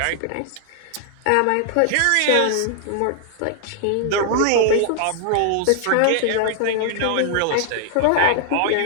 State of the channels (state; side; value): different; both; correlation 0.00